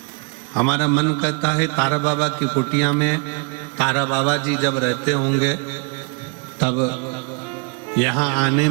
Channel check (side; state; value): left; quieter; 34.4 dB